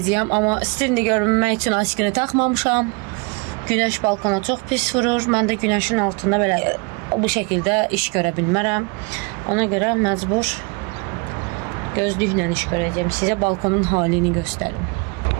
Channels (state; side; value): quieter; left; 30.4 dB